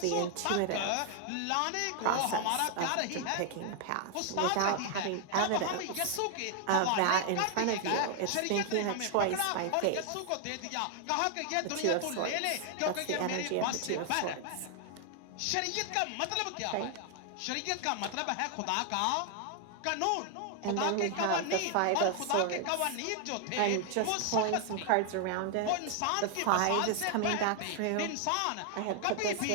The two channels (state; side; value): different; both; correlation 0.00